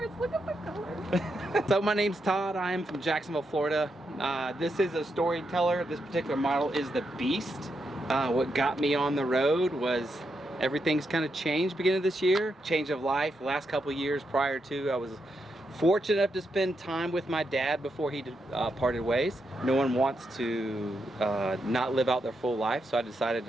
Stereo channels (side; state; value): both; normal; correlation 0.83